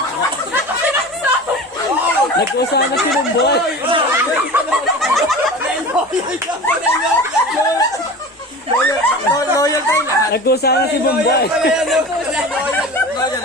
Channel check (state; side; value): normal; both; correlation 0.34